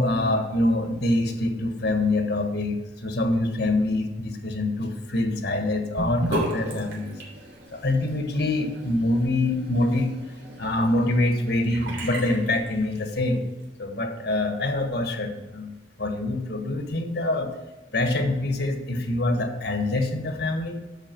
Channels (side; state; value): both; normal; correlation 0.62